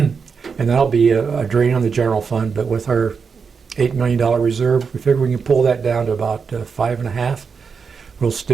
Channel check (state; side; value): quieter; left; 5.6 dB